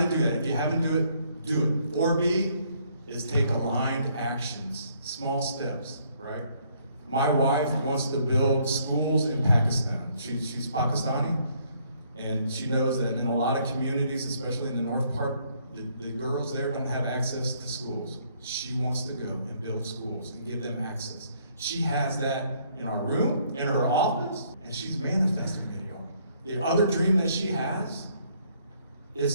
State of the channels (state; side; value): inverted; both; correlation -0.67